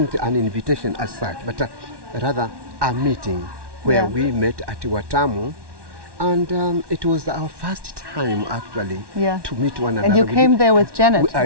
an invitation as such, but rather a meeting where we met at Watamu. And it was our first time, actually, to meet one another. And you came there with Janet, I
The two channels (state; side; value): late; left; 1.1 ms